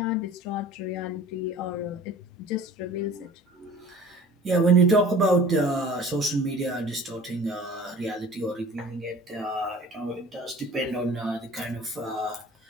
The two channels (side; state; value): both; normal; correlation 0.44